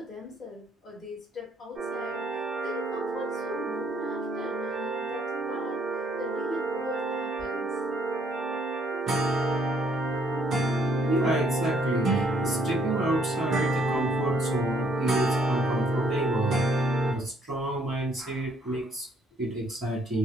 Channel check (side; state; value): both; normal; correlation 0.67